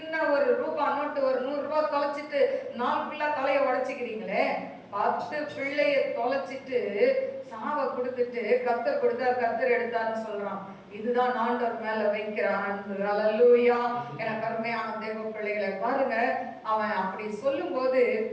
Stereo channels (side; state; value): both; identical; correlation 1.00